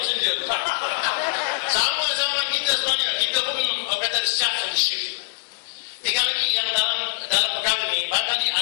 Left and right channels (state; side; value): silent; right; digital silence